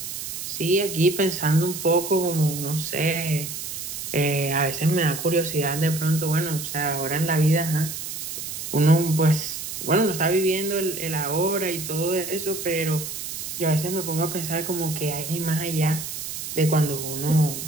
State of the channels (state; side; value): noise; right; hiss, 7 dB below the sound